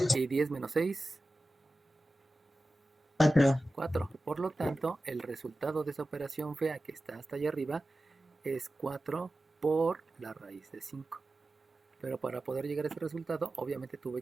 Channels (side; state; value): both; normal; correlation 0.95